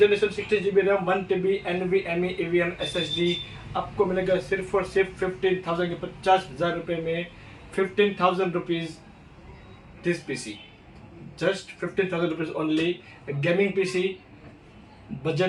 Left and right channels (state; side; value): identical; both; correlation 1.00